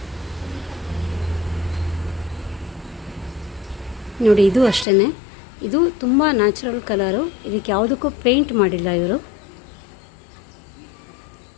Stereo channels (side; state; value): right; drops out; at 4.9 s